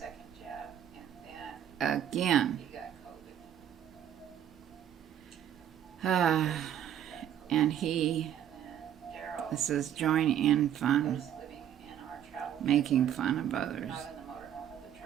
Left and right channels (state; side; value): quieter; left; 10.1 dB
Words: again. And this is join in fun, making fun of others.